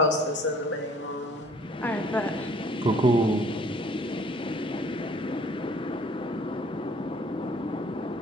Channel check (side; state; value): both; normal; correlation 0.55